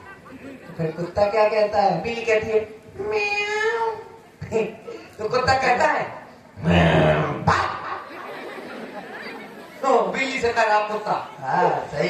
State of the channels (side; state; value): both; identical; correlation 1.00